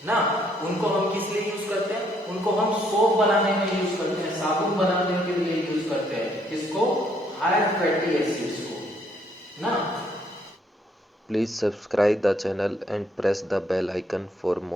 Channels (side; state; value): both; normal; correlation 0.69